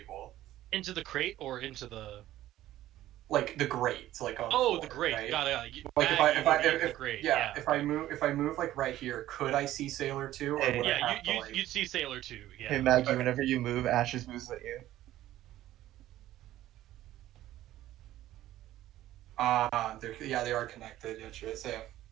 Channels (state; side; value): quieter; left; 14.2 dB